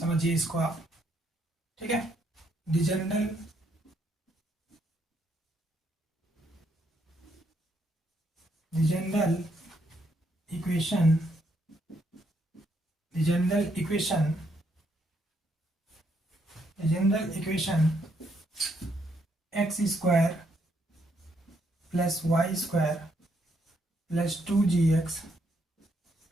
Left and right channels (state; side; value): normal; both; correlation 0.74